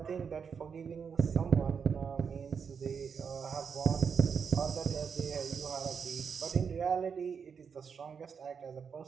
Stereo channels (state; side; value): quieter; left; 6.4 dB